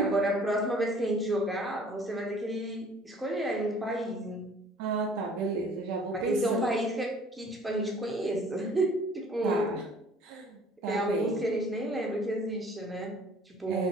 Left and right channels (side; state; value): both; normal; correlation 0.53